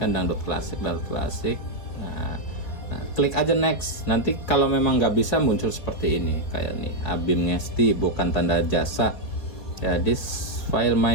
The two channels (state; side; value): late; right; 4.2 ms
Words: dangdut klasik. Nah, klik aja next. Nanti kalau memang nggak bisa muncul seperti ini, kayak nih Abim Ngesti, bukan tanda jasa ya, this file